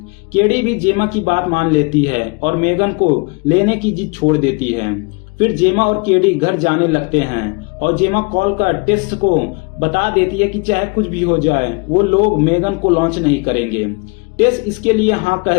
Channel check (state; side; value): quieter; right; 30.6 dB